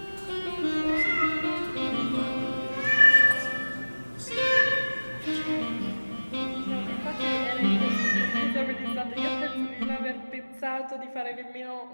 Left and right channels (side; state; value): both; inverted; correlation -1.00